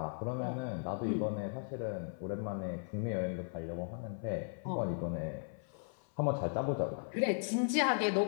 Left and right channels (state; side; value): silent; right; 53 dB below the other